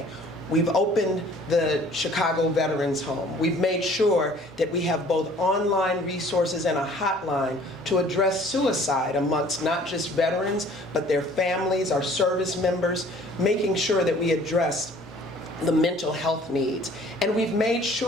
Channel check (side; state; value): both; normal; correlation 0.53